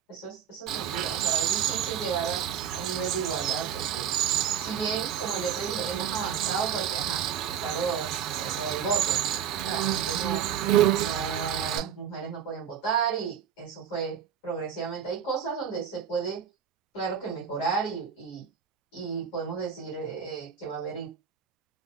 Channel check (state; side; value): quieter; left; 8.3 dB